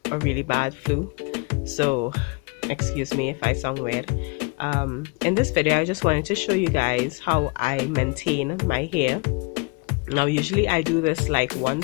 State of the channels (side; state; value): right; quieter; 29.4 dB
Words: a really bad flu, so excuse me if I sound weird. In this video I just wanted to show you guys how I maintain my hair. Now usually I do this like